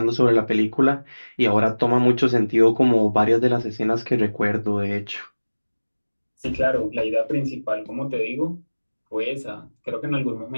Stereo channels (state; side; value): inverted; both; correlation -1.00